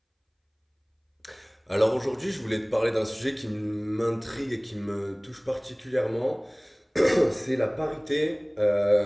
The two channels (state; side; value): identical; both; correlation 1.00